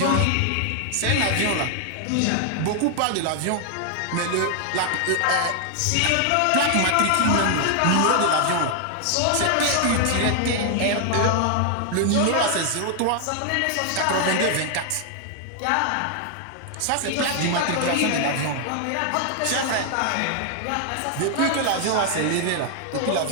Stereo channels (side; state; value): both; different; correlation 0.00